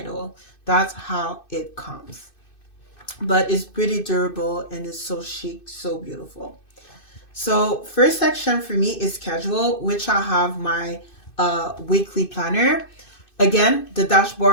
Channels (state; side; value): late; right; 2.6 ms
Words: That's how it comes. But it's pretty durable and it's so chic, so beautiful. So first section for me is schedule, which I have my weekly planner. Again, the